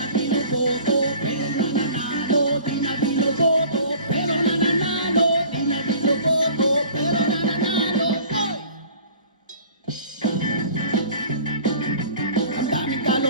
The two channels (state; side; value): inverted; both; correlation -0.46